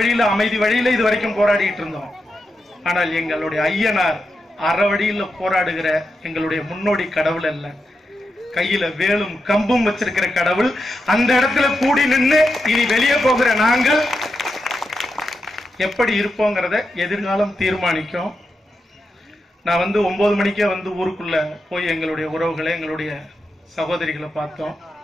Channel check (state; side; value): normal; both; correlation 0.87